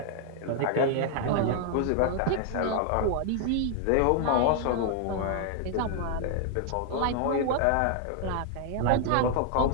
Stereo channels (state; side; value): different; both; correlation 0.00